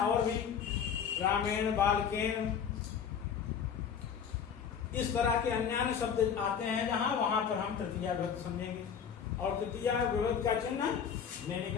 भी रामेण, बालकेन, इस तरह के अन्य शब्द आते हैं जहां, वहां पर हम तृतीया विभक्ति समझेंगे, और तृतीया विभक्ति का चिन्ह ने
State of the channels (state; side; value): quieter; right; 7.4 dB